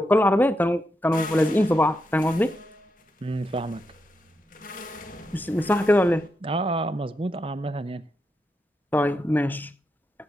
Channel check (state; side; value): normal; both; correlation 0.84